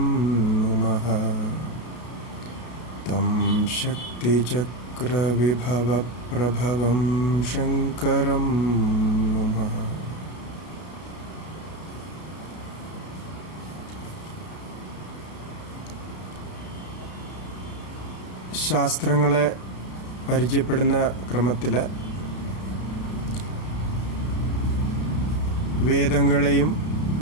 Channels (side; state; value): right; late; 33 ms